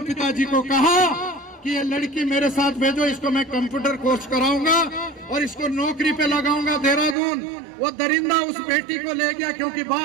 को कहा कि ये लड़की मेरे साथ भेजो, इसको मैं कंप्यूटर कोर्स कराऊंगा और इसको नौकरी पे लगाऊंगा देहरादून। वो दरिंदा उस बेटी को ले गया, क्योंकि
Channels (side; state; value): left; drops out; at 7.2 s